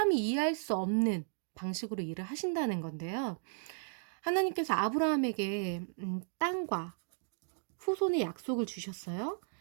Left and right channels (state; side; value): silent; left; digital silence